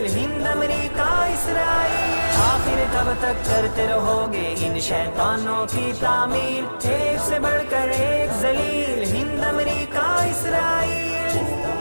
ہند امریکہ اسرائیل. آخر کب تک کرتے رہو گے ان شیطانوں کی تعمیل؟ ایک سے بڑھ کر ایک ذلیل ہند امریکہ اسرائیل.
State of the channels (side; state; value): both; inverted; correlation -1.00